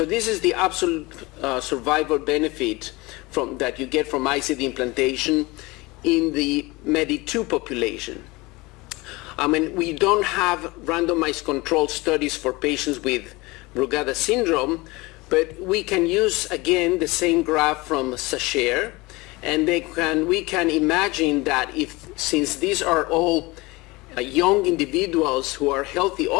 this is the absolute survival benefit that you get from ICD implantation in the MADE-2 population. I mean, we don't have randomized control studies for patients with Brugada syndrome, but we can use again the same graph from Sacher, and we can imagine that since these are all young individuals who are healthy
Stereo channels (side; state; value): right; quieter; 23.1 dB